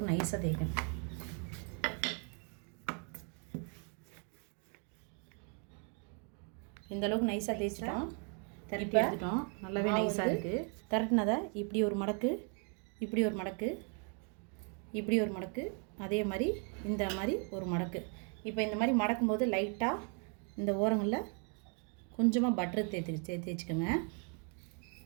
நைஸாக தேய்க்கணும். இந்தளவுக்கு நைஸாக தேய்ச்சிட்டோம், திரட்டி எடுத்துட்டோம். நல்லாவே நைஸாக இருக்குது. திரட்டினதை இப்படி ஒரு மடக்கு, இப்படி ஒரு மடக்கு, இப்படி ஒரு மடக்கு, அதே மாதிரி இந்த மாதிரி ஒரு மடக்கு. இப்போ இந்த மாதிரி மடக்கும்போது லைட்டாக இந்த ஓரங்களில் கொஞ்சமாக பட்டர் தேய்ச்சிக்கோங்க.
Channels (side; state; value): left; quieter; 39.8 dB